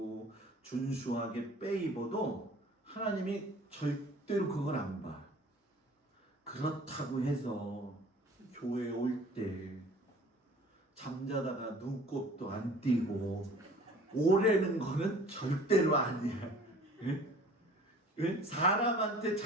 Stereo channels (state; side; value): normal; both; correlation 0.48